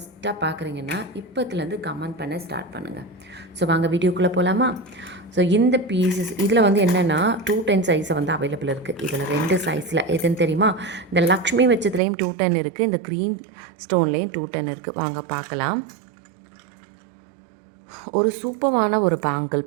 பார்க்குறீங்கன்னா இப்போத்துலேருந்து கமெண்ட் பண்ண ஸ்டார்ட் பண்ணுங்கள். ஸோ வாங்க வீடியோக்குள்ளே போகலாமா? ஸோ இந்த பீசஸ் இதில் வந்து என்னென்னா 210 சைஸை வந்து அவைலபிள் இருக்குது. இதில் 2 சைஸில் எதுன்னு தெரியுமா? இந்த லக்ஷ்மி வச்சதுலேயும் 210 இருக்குது, இந்த க்ரீன் ஸ்டோன்லேயும் 210 இருக்குது. வாங்க பார்க்கலாம். ஒரு சூப்பரான ஒரு பேங்கிள்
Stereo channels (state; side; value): drops out; left; at 12.0 s